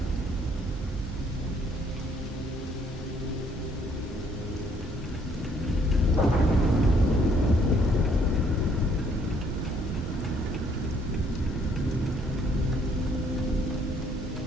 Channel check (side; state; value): both; normal; correlation 0.65